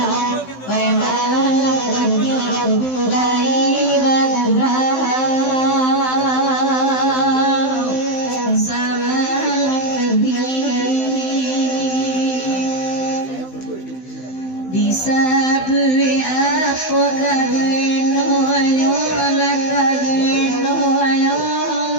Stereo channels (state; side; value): late; right; 16 ms